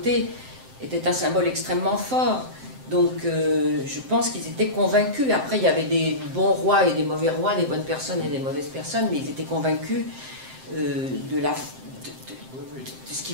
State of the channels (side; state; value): left; late; 7.7 ms